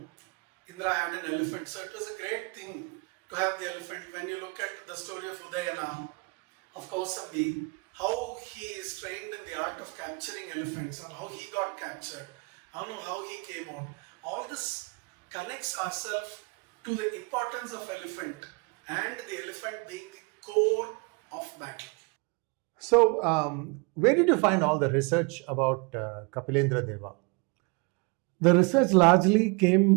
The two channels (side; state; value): left; quieter; 31.3 dB